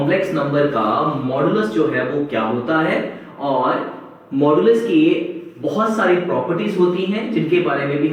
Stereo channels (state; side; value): identical; both; correlation 1.00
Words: नंबर का मॉडुलस जो है वो क्या होता है और मॉडुलस की बहुत सारी प्रॉपर्टीज होती हैं जिनके बारे में भी